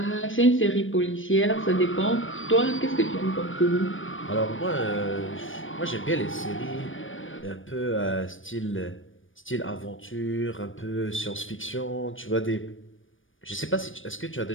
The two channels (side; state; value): right; late; 0.57 ms